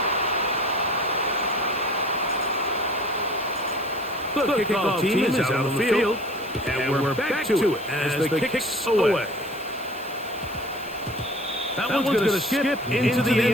The kickoff team is out on the field, and we're back to it as the kicks away. That one's going to skip into the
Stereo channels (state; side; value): noise; left; hiss, 21 dB below the sound